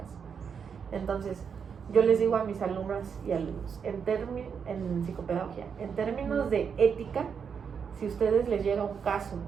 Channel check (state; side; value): quieter; left; 6.7 dB